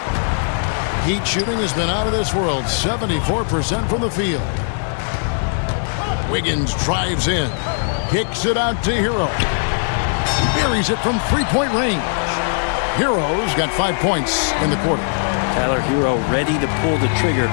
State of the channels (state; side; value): silent; right; 62 dB below the other